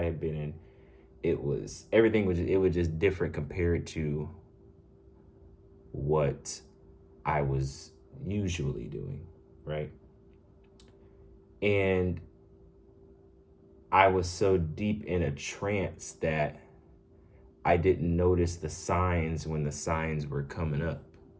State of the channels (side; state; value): both; identical; correlation 1.00